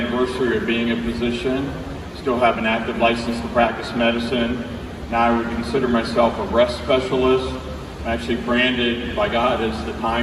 of being a physician. Still have an active license to practice medicine. Now I would consider myself a rest specialist. I'm actually branded by God as the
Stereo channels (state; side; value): identical; both; correlation 1.00